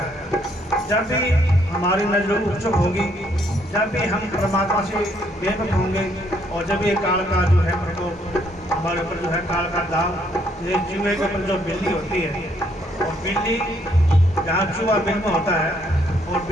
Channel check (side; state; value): both; normal; correlation 0.69